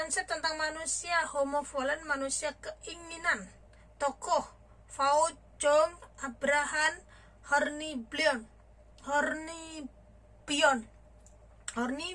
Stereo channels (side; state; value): both; identical; correlation 1.00